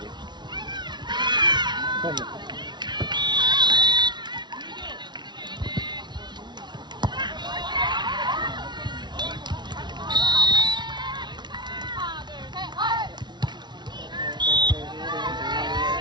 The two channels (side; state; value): left; late; 0.21 ms